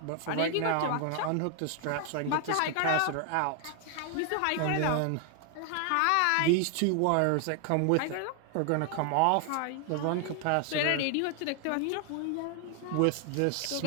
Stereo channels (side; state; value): both; different; correlation 0.00